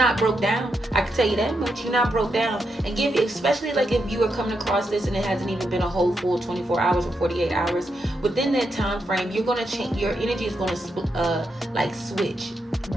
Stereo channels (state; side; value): normal; both; correlation 0.83